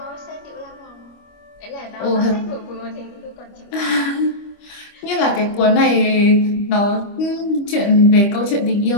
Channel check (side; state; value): right; late; 25 ms